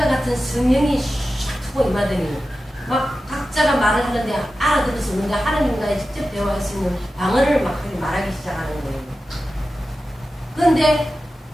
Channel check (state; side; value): normal; both; correlation 0.93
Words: 같은 성령이 샥 하고 임하더니 막 각자가 말을 하는데 알아들을 수 없는데 하나님과의 직접 대화할 수 있는 방언을 막 말하기 시작하는 거예요. 그런데